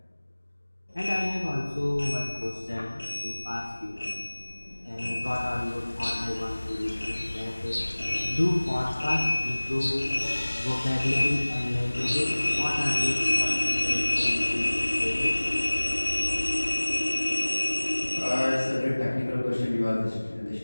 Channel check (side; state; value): both; inverted; correlation -1.00